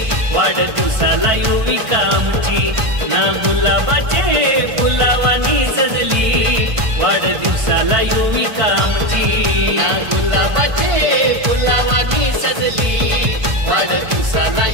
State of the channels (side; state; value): left; late; 1.5 ms